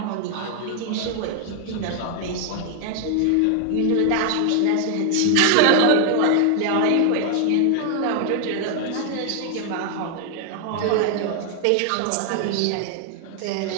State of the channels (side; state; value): both; different; correlation 0.00